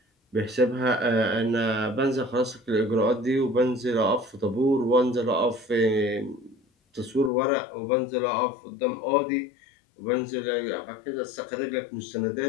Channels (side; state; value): right; drops out; at 7.3 s